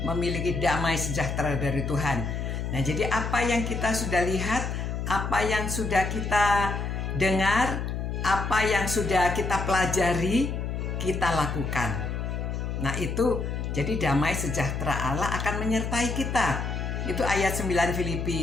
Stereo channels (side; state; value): left; noise; hum, 3 dB below the sound